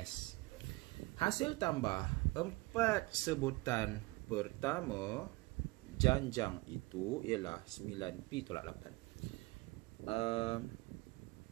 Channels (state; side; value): quieter; left; 22.8 dB